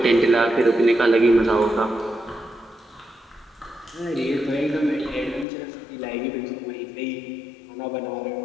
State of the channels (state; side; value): drops out; right; at 5.5 s